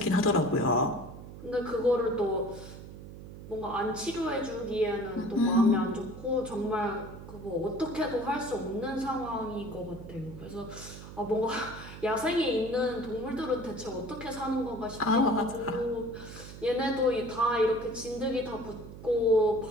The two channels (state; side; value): noise; right; hum, 13 dB below the sound